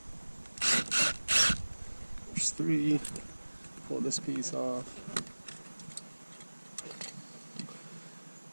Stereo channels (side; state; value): both; inverted; correlation -1.00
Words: There's 3. Pull this piece off.